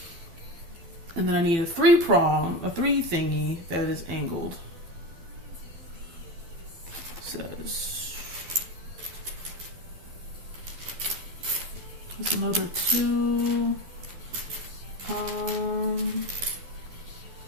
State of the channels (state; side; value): late; left; 12 ms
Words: And then I need a 3 thingy that is angled. Says there's another 2. So